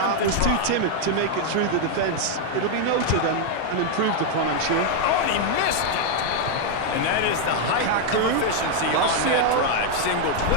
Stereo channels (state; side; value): different; both; correlation 0.00